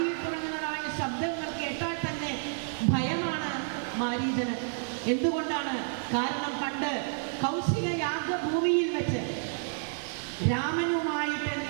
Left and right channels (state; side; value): silent; left; 56 dB below the other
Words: തുടങ്ങുന്നതായ ശബ്ദങ്ങൾ കേട്ടാൽ തന്നെ ഭയമാണ് മാരീചന്. എന്തുകൊണ്ടാണ്? കാരണം പണ്ട് കൗശിക യാഗഭൂമിയിൽ വെച്ച് രാമനുമായിട്ട്